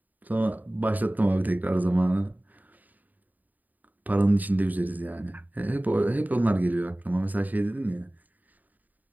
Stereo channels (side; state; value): left; late; 0.082 ms